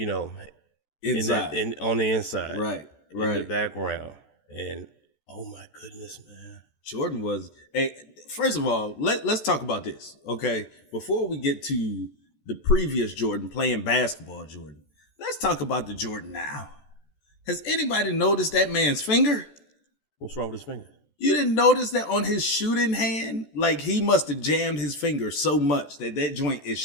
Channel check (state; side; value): late; right; 14 ms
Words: inside. on the inside. Right. In the background. And oh my goodness, man. Jordan was first of all, let's talk about this, okay? Before we get to the previous Jordan playing basketball Jordan, let's talk about the Jordan now. Has anybody noticed that man's finger? What's wrong with his finger? You didn't notice that on his shooting hand? Like he must have jammed his finger so much that joint